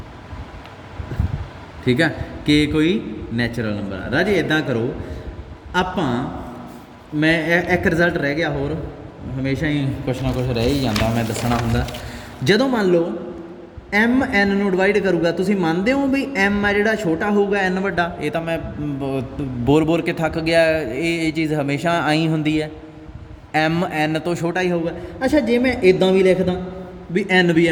ਠੀਕ ਆ, K ਕੋਈ ਨੈਚੁਰਲ ਨੰਬਰ ਆ। ਰਾਜੇ ਇੱਦਾਂ ਕਰੋ, ਆਪਾਂ ਮੈਂ ਇੱਕ ਰਿਜ਼ਲਟ ਰਹਿ ਗਿਆ ਹੋਰ, ਹਮੇਸ਼ਾ ਹੀ ਕੁਛ ਨਾ ਕੁਛ ਰਹਿ ਹੀ ਜਾਂਦਾ, ਮੈਂ ਦੱਸਣਾ ਹੁੰਦਾ। ਜਦੋਂ ਮੰਨ ਲਓ M N ਨੂੰ ਡਿਵਾਈਡ ਕਰੂਗਾ, ਤੁਸੀਂ ਮੰਨਦੇ ਹੋ ਵੀ M ਆ ਜਿਹੜਾ ਛੋਟਾ ਹੋਊਗਾ N ਵੱਡਾ? ਇਹ ਤਾਂ ਮੈਂ ਬੋਲ ਕੇ ਥੱਕ ਗਿਆ, ਇਹ ਚੀਜ਼ ਹਮੇਸ਼ਾ ਆਈ ਹੁੰਦੀ ਹੈ, M N ਤੋਂ ਛੋਟਾ ਹੀ ਹੋਊਗਾ। ਅੱਛਾ, ਜੇ ਮੈਂ ਇੱਦਾਂ ਵੀ ਲਿਖਦਾ ਵੀ N ਵੀ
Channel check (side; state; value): both; identical; correlation 1.00